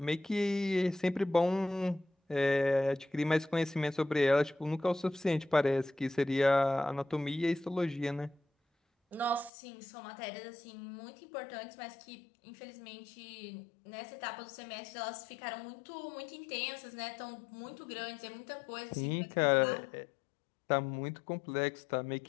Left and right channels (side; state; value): right; drops out; at 9.5 s